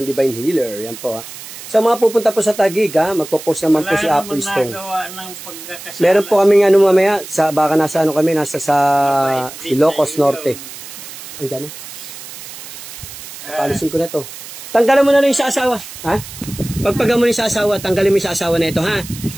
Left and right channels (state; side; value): noise; right; hiss, 13 dB below the sound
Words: Divine Healer. Yan po ha. Sa mga pupunta po sa Taguig ha, magpo-post naman po si Apo Stone. nagawa ng pagkakasala. Meron po kaming ano mamaya, baka nasa ano kami, nasa sa Ilocos Norte. Andiyan na. Papalisin ko na to. Tanggalan mo na lang yung sa asawa. Ha? Pagpaga mo na yung sa asawa, tanggalin mo yung sa asawa na ito, ha?